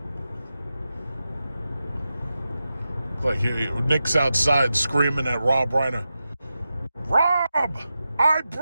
Like Nick's outside screaming at Rob Reiner. Rob, I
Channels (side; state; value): both; inverted; correlation -0.91